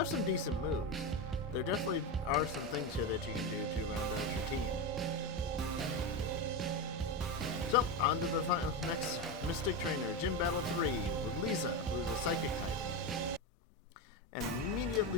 some decent moves. There definitely are some things here that you can do to round out your team. So, on to the next Mystic Trainer, Gym Battle 3, with Lisa, who's a Psychic type. And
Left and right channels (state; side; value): normal; both; correlation 0.15